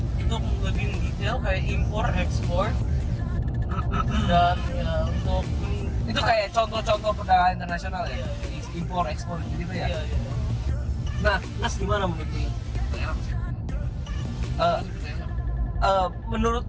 untuk lebih detail kayak impor ekspor dan ya untuk Itu kayak contoh-contoh perdagangan internasional ya? Impor, ekspor gitu ya? iya. Nah, Nas gimana menurut lu? Menurut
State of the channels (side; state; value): both; identical; correlation 1.00